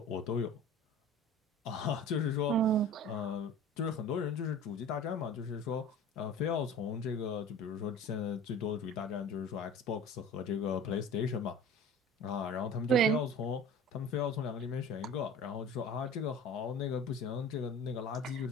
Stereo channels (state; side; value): normal; both; correlation 0.40